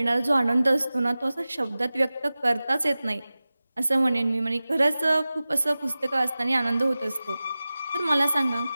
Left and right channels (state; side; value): inverted; both; correlation -0.97